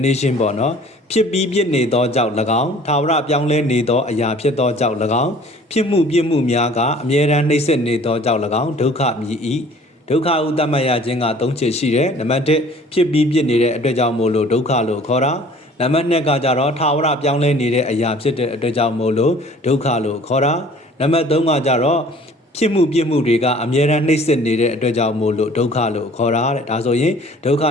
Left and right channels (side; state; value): both; normal; correlation 0.51